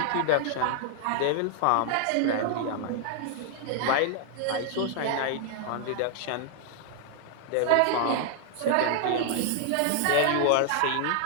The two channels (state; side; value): different; both; correlation 0.00